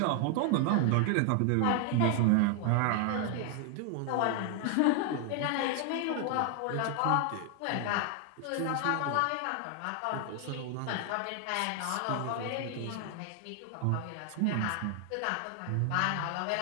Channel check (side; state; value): both; different; correlation 0.00